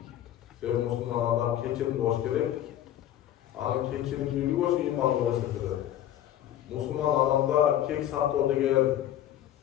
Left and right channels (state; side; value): quieter; right; 11.8 dB